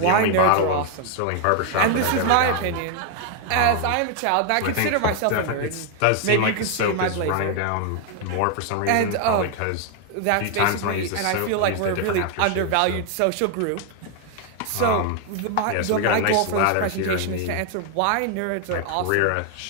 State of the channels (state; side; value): different; both; correlation 0.00